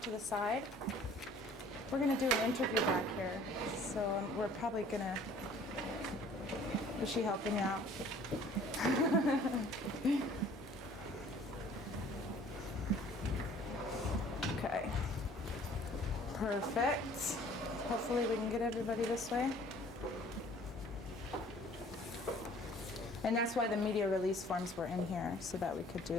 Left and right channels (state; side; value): normal; both; correlation 0.53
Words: to the side. We're going to do an interview back here. So we're probably going to... Is she helping you out? Okay. Perfect. Hopefully we can get everybody this way. And that's why the media release forms were in here, so that we could